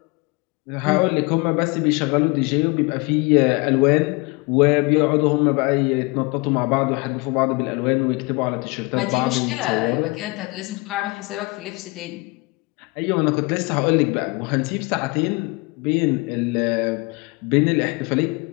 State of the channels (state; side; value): quieter; right; 26.6 dB